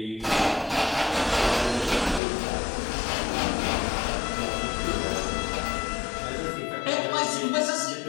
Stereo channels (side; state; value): right; drops out; at 2.2 s